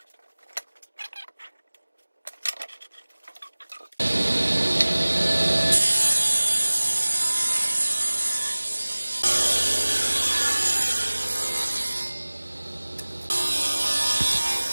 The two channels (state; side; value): inverted; both; correlation -1.00